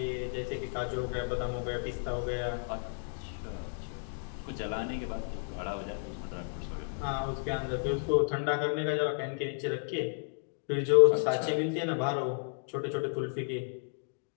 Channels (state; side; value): silent; right; digital silence